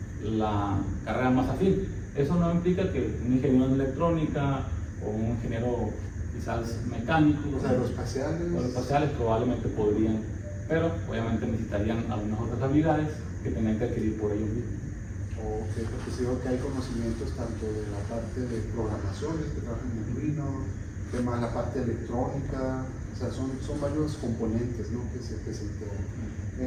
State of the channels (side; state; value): both; identical; correlation 1.00